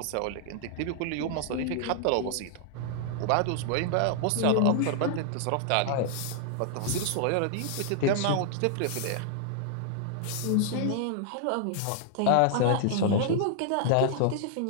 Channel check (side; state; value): both; different; correlation -0.01